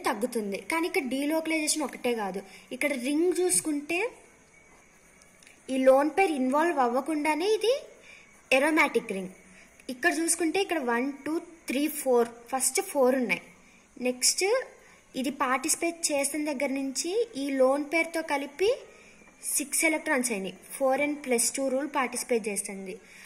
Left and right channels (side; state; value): both; identical; correlation 1.00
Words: తగ్గుతుంది. కానీ ఇక్కడ డీలోకలైజేషన్ ఒకటే కాదు, ఇక్కడ రింగ్ చూసుకుంటే ఈ లోన్ పేర్ ఇన్వాల్వ్ అవ్వకుండానే ఇది ఎరోమాటిక్ రింగ్. ఇక్కడ చూసుకుంటే ఇక్కడ 1 2 3 4 ఫస్ట్ 4 ఉన్నాయి. నెక్స్ట్ ఇది పార్టిసిపేట్ చేసిన దగ్గర నుంచి ఈ లోన్ పేరుతో కలిపి 6 ఎలక్ట్రాన్స్ అయినాయి. 4n+2 రూల్ పార్టిసిపేట్ చేస్తుంది.